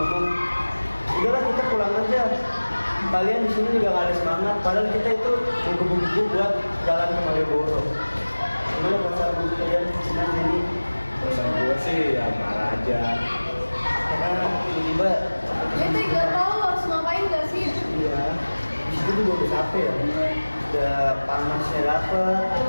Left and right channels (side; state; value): both; inverted; correlation -1.00